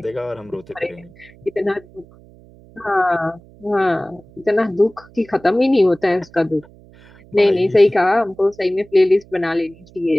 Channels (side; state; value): right; noise; hum, 25 dB below the sound